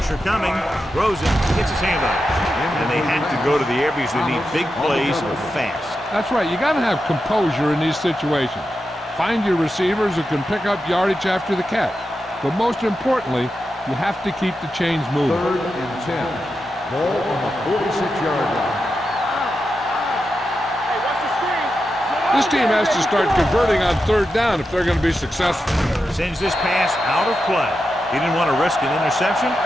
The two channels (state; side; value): normal; both; correlation 0.89